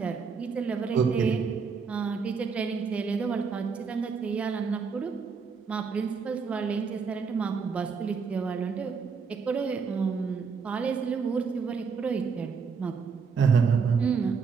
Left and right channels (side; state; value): left; quieter; 5.6 dB